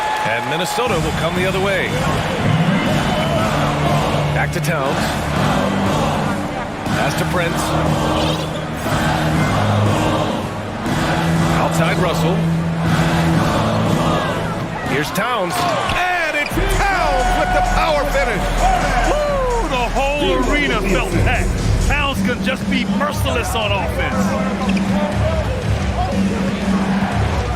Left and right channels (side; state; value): both; identical; correlation 1.00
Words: And Minnesota will come the other way. Back to Towns. Pass to Prince. Outside Russell. Here's Towns. And it's Towns with the power finish. Woo! The whole arena felt packed. Towns could just be merciless on offense.